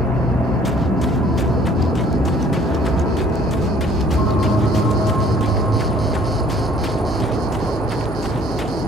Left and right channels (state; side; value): normal; both; correlation 0.56